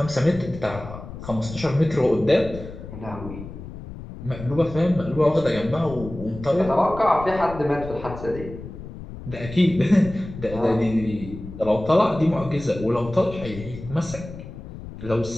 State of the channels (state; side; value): noise; left; rumble, 12 dB below the sound